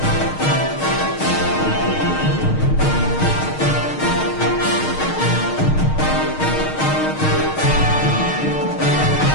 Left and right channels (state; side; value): late; right; 6.5 ms